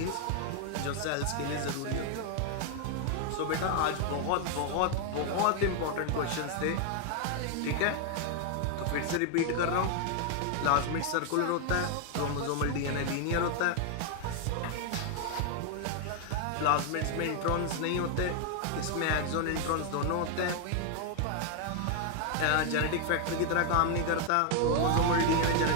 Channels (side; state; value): both; different; correlation 0.00